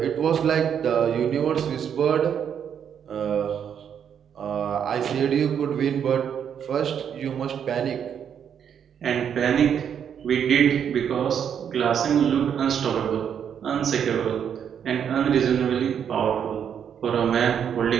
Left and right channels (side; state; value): left; quieter; 8.3 dB